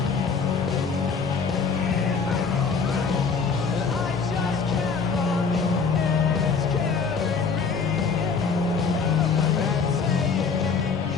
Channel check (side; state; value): right; quieter; 5.3 dB